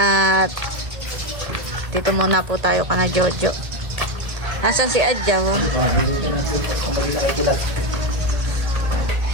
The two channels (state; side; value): late; left; 1.4 ms